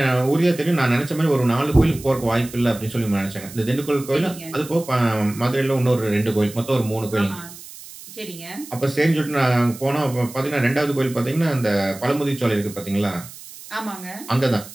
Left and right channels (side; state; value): right; noise; hiss, 16 dB below the sound